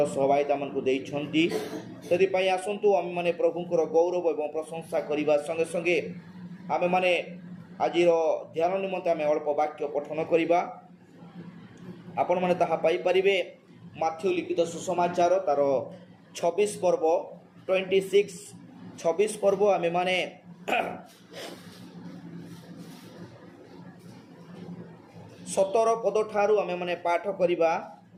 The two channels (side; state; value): both; identical; correlation 1.00